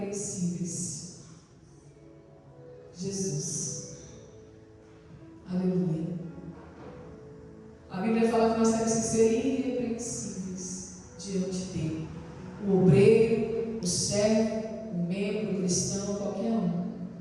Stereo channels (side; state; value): both; identical; correlation 1.00